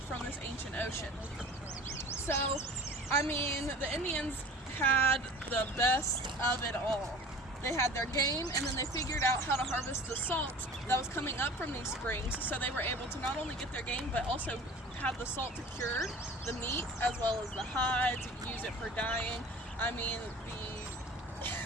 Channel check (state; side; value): normal; both; correlation 0.42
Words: this ancient ocean. So, I mean, the Indians had the best of it all. They had their game, and then they figured out how to harvest the salt that was coming up from these springs, so they were able to not only get their game, but also have the salt to cure the meat, as well as the hides, use it for dyeing. I mean,